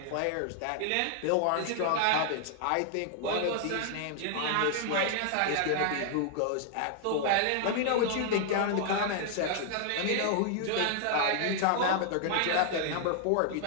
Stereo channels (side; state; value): both; different; correlation 0.00